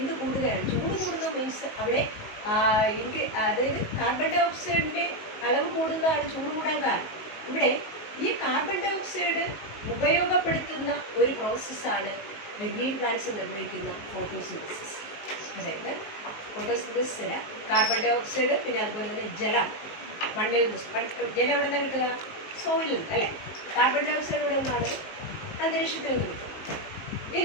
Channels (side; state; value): right; late; 19 ms